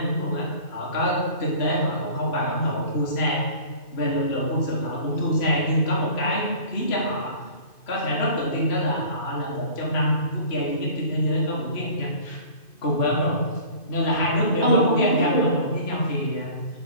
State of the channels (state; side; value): late; right; 2.5 ms